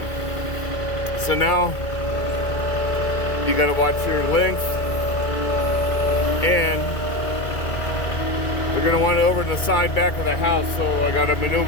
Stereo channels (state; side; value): late; right; 2.0 ms